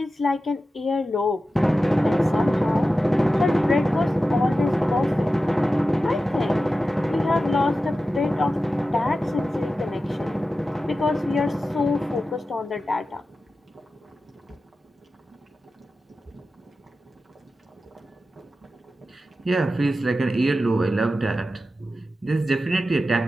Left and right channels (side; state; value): both; normal; correlation 0.93